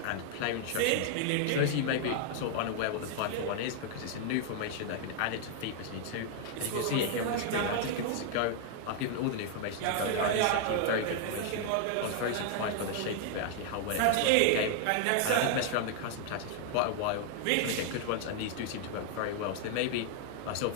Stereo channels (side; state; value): both; different; correlation 0.00